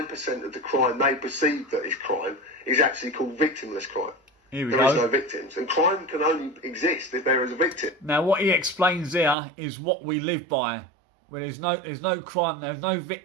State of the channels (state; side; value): drops out; left; at 9.3 s